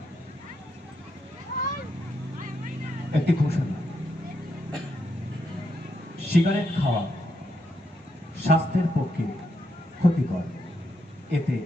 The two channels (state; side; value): normal; both; correlation 0.80